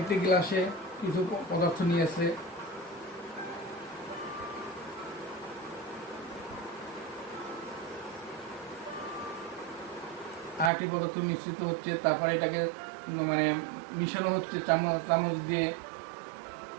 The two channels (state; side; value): drops out; left; at 10.7 s